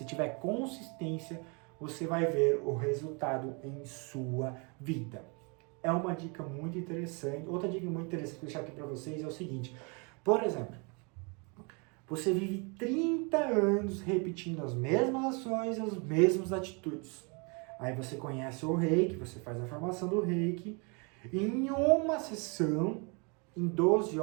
tiver consistência, você vai ver o resultado em sua vida. É uma dica muito interessante. Outra dica muito interessante que eu vou deixar aqui para vocês é o seguinte. Por exemplo, você vive 30 anos repetindo as mesmas ações, as mesmas atitudes. Aí você conhece o reiki, você faz a formação do reiki. Em uma sessão, em 12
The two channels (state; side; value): quieter; left; 32.7 dB